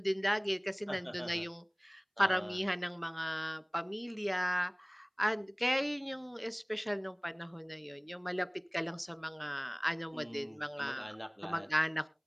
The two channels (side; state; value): both; identical; correlation 1.00